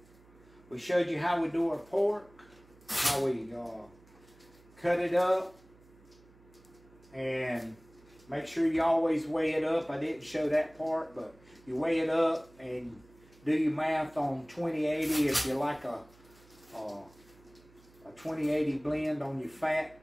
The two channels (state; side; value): noise; right; hum, 26 dB below the sound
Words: showed you how we do our pork, how we cut it up, and make sure you always weigh it up. I didn't show that part, but you weigh it up and do your math on 20/80 if you like a 20/80 blend on your fat